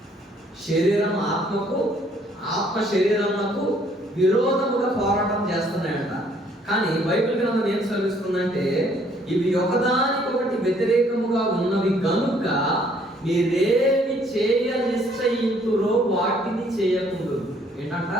శరీరం ఆత్మకు, ఆత్మ శరీరమునకు విరోధముగా పోరాటం చేస్తున్నాయంట. కానీ బైబిల్ గ్రంథం ఏం సెలవిస్తుందంటే ఇవి ఒకదానికొకటి వ్యతిరేకముగా ఉన్నవి కనుక మీరేమి చేయ నిశ్చయింతురో వాటిని చేయకూడదు. ఏంటంట?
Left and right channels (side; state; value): both; normal; correlation 0.63